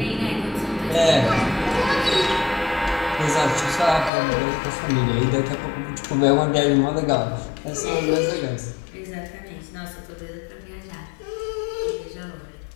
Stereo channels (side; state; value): right; drops out; at 4.1 s